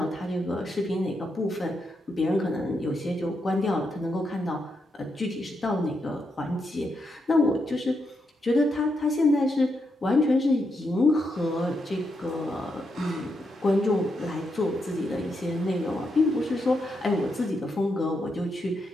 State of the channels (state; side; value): normal; both; correlation 0.82